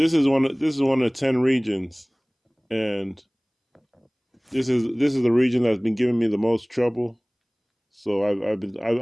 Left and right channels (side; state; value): both; identical; correlation 1.00